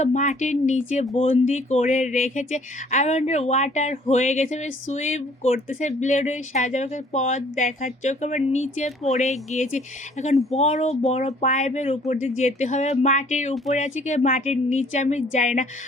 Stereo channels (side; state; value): both; normal; correlation 0.58